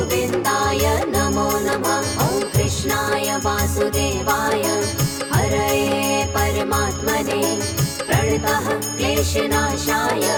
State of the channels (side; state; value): both; identical; correlation 1.00